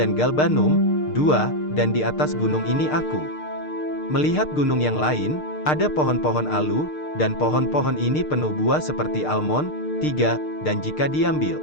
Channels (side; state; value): right; late; 6.6 ms